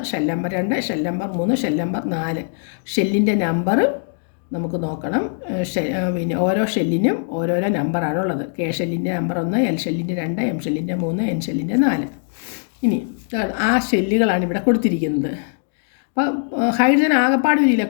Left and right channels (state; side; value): silent; right; 65 dB below the other